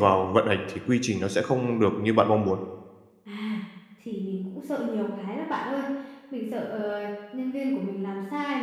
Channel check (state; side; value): identical; both; correlation 1.00